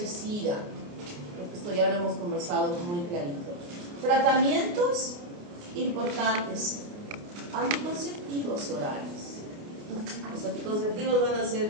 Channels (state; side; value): late; left; 29 ms